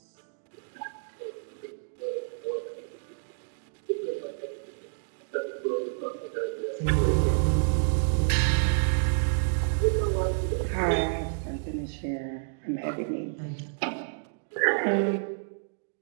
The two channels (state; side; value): silent; left; digital silence